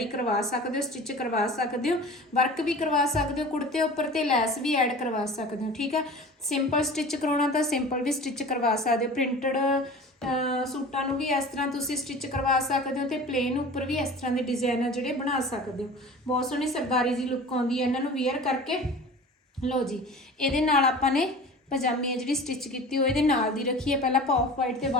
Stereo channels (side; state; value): both; normal; correlation 0.39